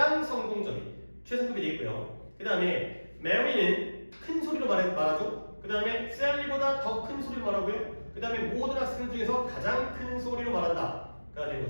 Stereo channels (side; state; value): both; inverted; correlation -1.00